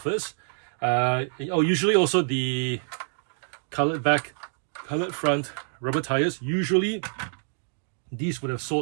Usually also the colored back, colored front, rubber tires. Usually these would have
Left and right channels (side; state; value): left; silent; 60 dB below the other